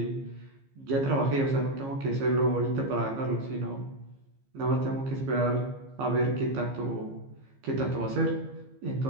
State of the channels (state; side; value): late; left; 15 ms